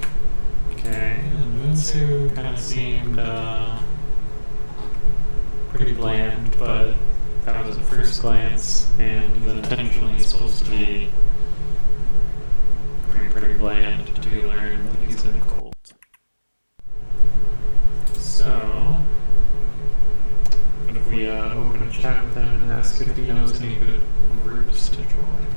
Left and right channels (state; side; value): inverted; both; correlation -1.00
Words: okay, and Moonsu kind of seemed pretty bland, but that was at first glance, and he's intentionally supposed to be pretty bland until you learn that he's in a cult. So